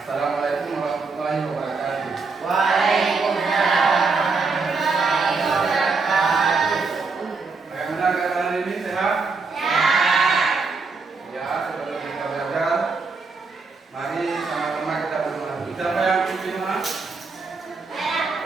Assalamualaikum warahmatullahi wabarakatuh. Bagaimana keadaan ini, sehat? Ya, sebelum kita belajar, mari sama-sama kita berdoa. Siapa yang pimpin doa?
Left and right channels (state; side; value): quieter; left; 4.3 dB